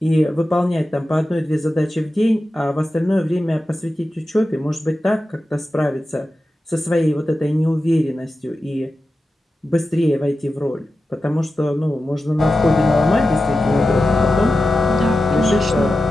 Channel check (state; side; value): normal; both; correlation 0.92